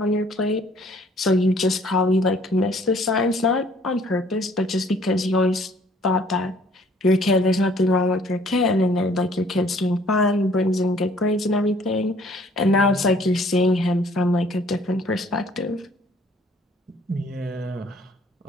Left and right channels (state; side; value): normal; both; correlation 0.58